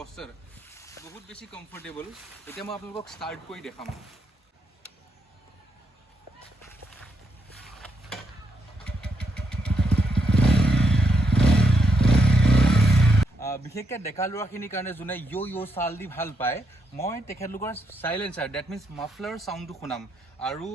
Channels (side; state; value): both; normal; correlation 0.79